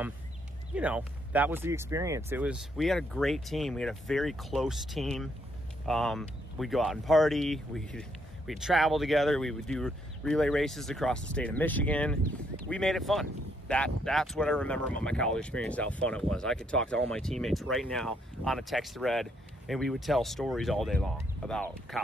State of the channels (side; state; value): both; normal; correlation 0.73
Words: you know, that was the experience. We had a great team. We had a very close team. We'd go out and party. We'd travel together. We would do relay races across the state of Michigan. We made it fun. That's what I remember about my college experience, how fun it was. I could talk to all my teammates right now on a text thread, and we would tell stories all day long about